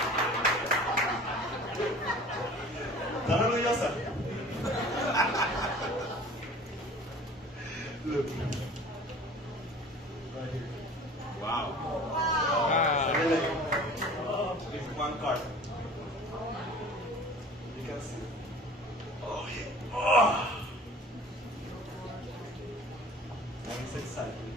Tan orgullosa. Look. Right here. Wow. It's one card. You can see. Oh yeah. Oh. And it's exciting.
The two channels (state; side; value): normal; both; correlation 0.44